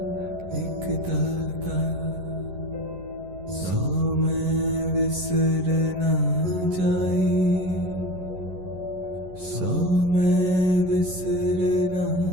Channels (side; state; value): left; late; 11 ms